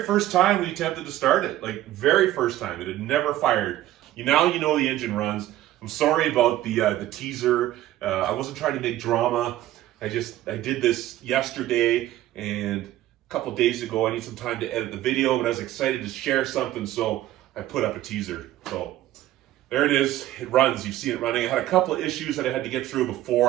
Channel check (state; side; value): quieter; left; 14.2 dB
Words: first time we attempted to start it. Like, very first time. It had never fired. Now you know the engine runs. I'm sorry about the teaser. I wasn't trying to make drama. I did this yesterday, and a couple days ago I need some time to edit the video, but I was excited to share something, so I put up a teaser. So there it is. It runs. You've seen it running. I had a couple of issues that I had to get through before